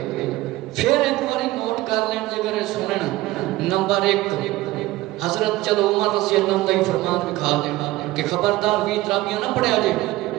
پھر ایک باری نوٹ کر لیں جگر سنن نمبر 1 حضرت چلو عمر رضی اللہ عنہ فرمان دکھا دینا کہ خبردار 20 تراویاں نہ پڑھیا جے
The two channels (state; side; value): quieter; left; 17.5 dB